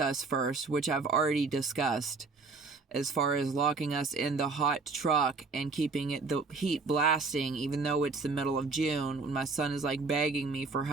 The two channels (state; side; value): quieter; left; 4.2 dB